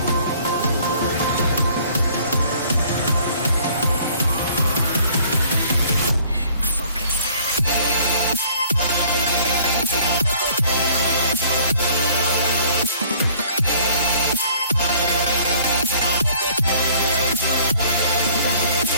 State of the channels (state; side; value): inverted; both; correlation -0.55